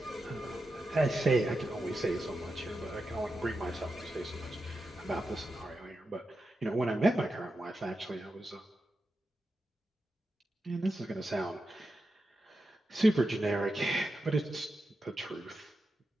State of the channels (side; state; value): both; normal; correlation 0.89